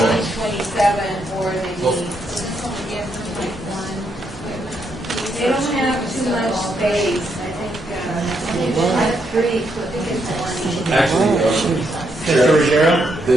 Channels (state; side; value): normal; both; correlation 0.78